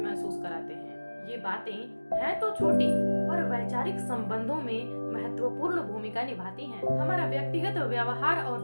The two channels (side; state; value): both; inverted; correlation -1.00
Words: कराते हैं। ये बातें हैं तो छोटी पर वैचारिक संबंधों में महत्वपूर्ण भूमिका निभाती हैं। हमारा व्यक्तिगत व्यवहार और